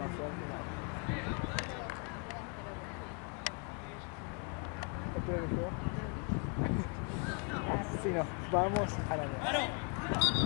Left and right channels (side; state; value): right; quieter; 35.1 dB